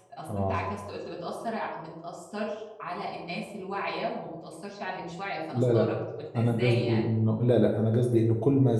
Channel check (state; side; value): identical; both; correlation 1.00